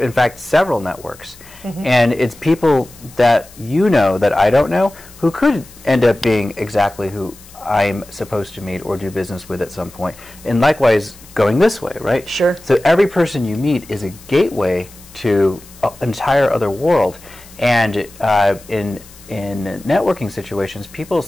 fact, several networks. And it's people that you know that I don't know who could end up being exactly who I'm supposed to meet or do business with at some point. And likewise, going this way, right? Sure. So every person you meet is a gateway to an entire other world. And in networking situations, people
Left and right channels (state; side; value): noise; left; hiss, 22 dB below the sound